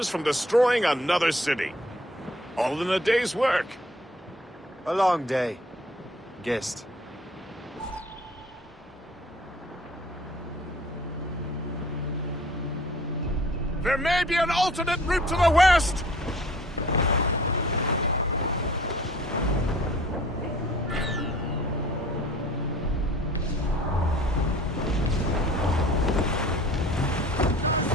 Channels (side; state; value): both; normal; correlation 0.52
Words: from destroying another city. All in a day's work. A long day. Gist. There may be an alternate route to the west!